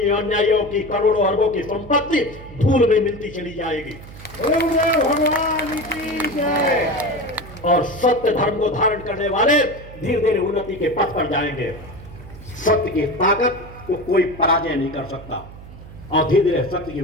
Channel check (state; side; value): noise; right; hum, 16 dB below the sound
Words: अन्यायियों की करोड़ों अरबों की संपत्ति धूल में मिलती चली जाएगी। भगवान की जय। और सत्य धर्म को धारण करने वाले धीरे धीरे उन्नति के पथ पर जाएंगे। सत्य की ताकत को कोई पराजय नहीं कर सकता। और धीरे धीरे सत्य की